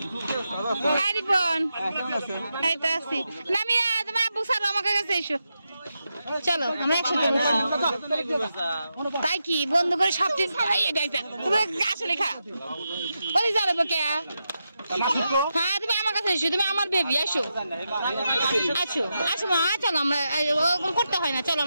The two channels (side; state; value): both; inverted; correlation -0.87